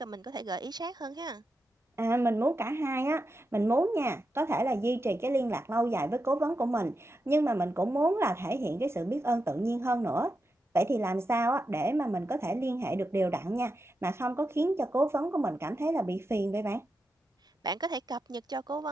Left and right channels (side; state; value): both; normal; correlation 0.88